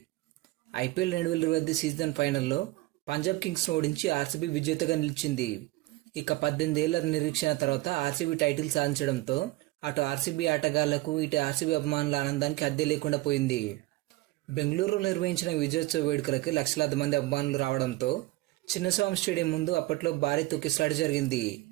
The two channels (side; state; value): left; quieter; 19.3 dB